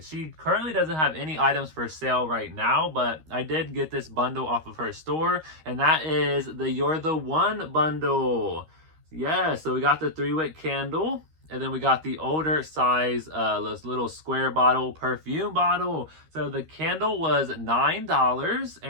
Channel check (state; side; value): late; left; 13 ms